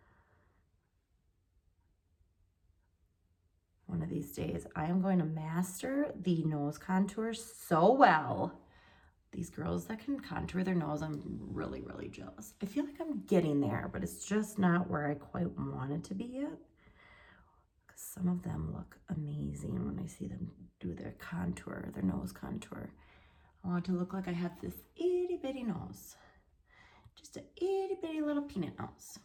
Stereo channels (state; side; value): identical; both; correlation 1.00